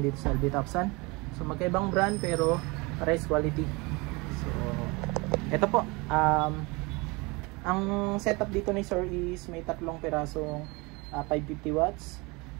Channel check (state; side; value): quieter; left; 25.9 dB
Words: dito sa LB Topsan. So magkaibang brand pero pares quality. So ito po, ang setup dito ni Sir is may tatlong pirasong 550 watts.